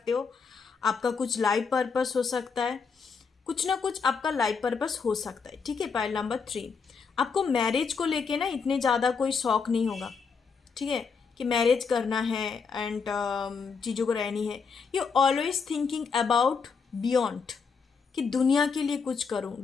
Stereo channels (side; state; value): right; quieter; 5.5 dB